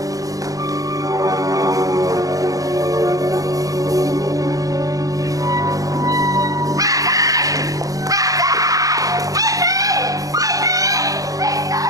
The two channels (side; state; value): left; late; 0.17 ms